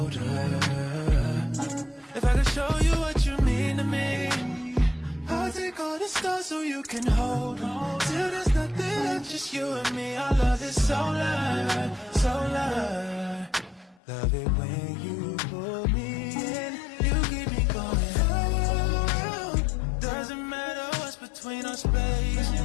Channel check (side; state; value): right; drops out; at 14.0 s